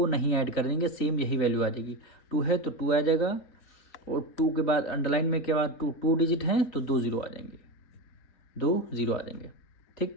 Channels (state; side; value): late; right; 3.9 ms